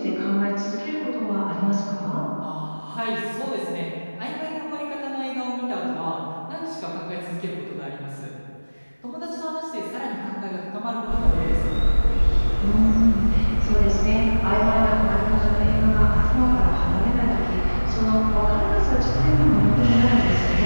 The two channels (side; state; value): both; inverted; correlation -1.00